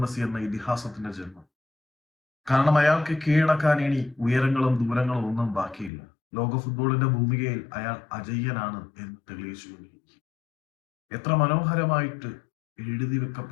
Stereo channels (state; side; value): drops out; right; at 5.9 s